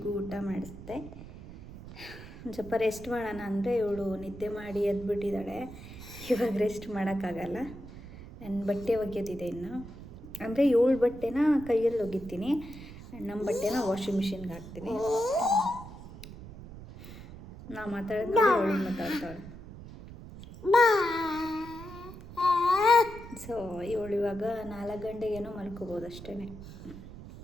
ಊಟ ಮಾಡಿಸ್ದೆ. ಒಂದು ಸ್ವಲ್ಪ ರೆಸ್ಟ್ ಮಾಡೋಣ ಅಂದರೆ ಇವಳು ನಿದ್ದೆ ಮಾಡಿ ಎದ್ಬಿಟ್ಟಿದ್ದಾಳೆ. ಇವಾಗ ರೆಸ್ಟ್ ಮಾಡೋಕ್ಕಾಗಲ್ಲ. ನನ್ನ ಬಟ್ಟೆ ಒಗೆಯೋದಿದೆ ಇನ್ನು. ಅಂದರೆ ಇವಳು ಬಟ್ಟೆನ ಕೈಯಲ್ಲಿ ಒಗಿತೀನಿ, ನಮ್ಮ ಬಟ್ಟೆನ ವಾಷಿಂಗ್ ಮಿಷಿನ್ಗೆ ಹಾಕ್ತೀನಿ. ನಾ ಮಾತಾಡಿದ್ರೆ ಅವಳು ಮಾತಾಡ್ತಾಳೆ. ಸೊ ಇವಳು ಇವಾಗ 4 ಗಂಟೆಗೇನೋ ಮಲ್ಕೋಬೋದು ಅಷ್ಟೇ.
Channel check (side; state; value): right; noise; rumble, 14 dB below the sound